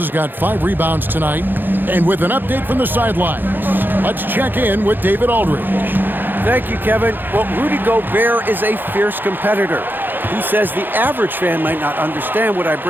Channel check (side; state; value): left; late; 0.093 ms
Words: got 5 rebounds tonight. And with an update from the sidelines, let's check in with David Aldridge. Thank you, Kevin. Well, Rudy Gobert is a fierce competitor. He says the average fan might not understand what I